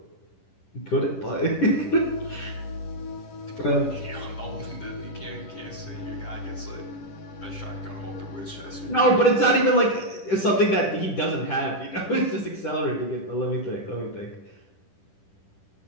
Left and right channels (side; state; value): right; late; 10 ms